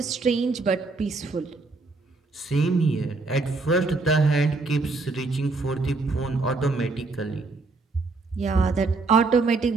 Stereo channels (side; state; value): left; quieter; 3.7 dB